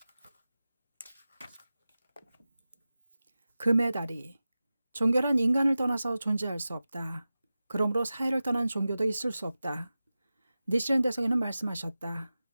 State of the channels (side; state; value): both; inverted; correlation -0.95